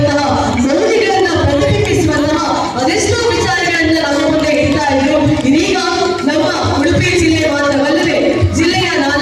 ಮೌಲ್ಯಗಳನ್ನ ಪ್ರತಿಬಿಂಬಿಸುವಂತಹ ಅದೆಷ್ಟೋ ವಿಚಾರಗಳನ್ನ ನಮ್ಮ ಮುಂದೆ ಇಡ್ತಾ ಇದ್ರು. ಇದೀಗ ನಮ್ಮ ಉಡುಪಿ ಜಿಲ್ಲೆ ಮಾತ್ರವಲ್ಲದೆ ಜಿಲ್ಲೆಯ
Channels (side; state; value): both; identical; correlation 1.00